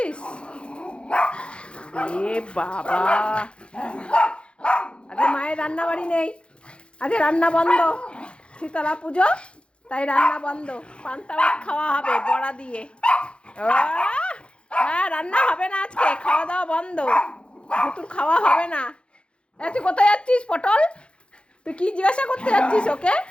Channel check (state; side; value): late; right; 0.057 ms